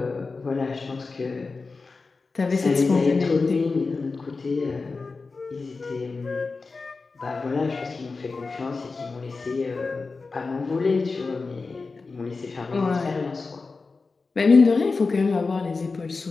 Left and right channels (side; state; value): right; quieter; 4.1 dB